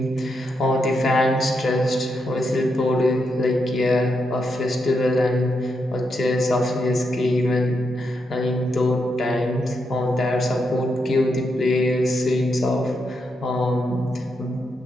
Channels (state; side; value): normal; both; correlation 0.82